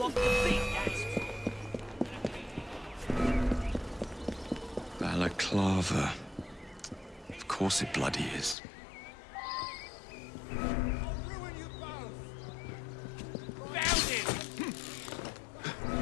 the beat. Balaclava. Of course it bloody is.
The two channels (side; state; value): right; drops out; at 8.6 s